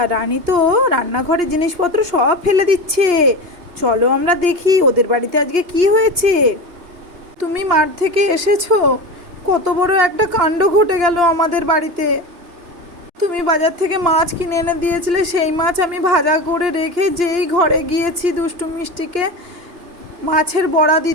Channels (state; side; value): late; left; 2.8 ms